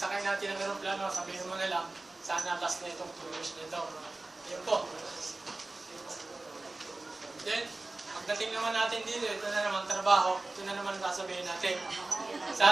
natin ng aeroplano, sabihin mo na lang, sana last na itong 2 years nito. Yun po. Then, pagdating naman natin dito, ito na naman trabaho, ito na naman sasabihin natin.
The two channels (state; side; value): quieter; left; 3.1 dB